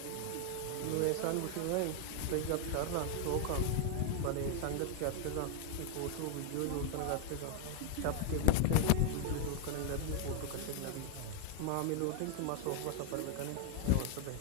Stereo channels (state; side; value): different; both; correlation 0.00